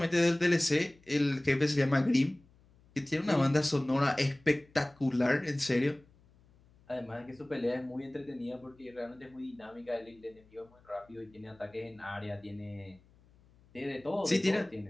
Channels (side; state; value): left; noise; hum, 29 dB below the sound